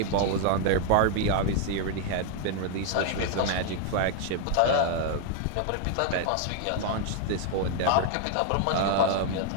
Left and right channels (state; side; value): different; both; correlation 0.00